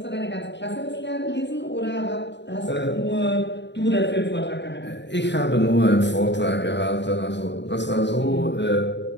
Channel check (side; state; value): right; late; 0.52 ms